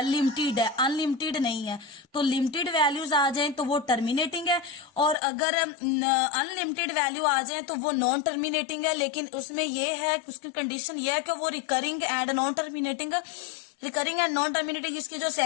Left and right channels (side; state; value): right; drops out; at 5.2 s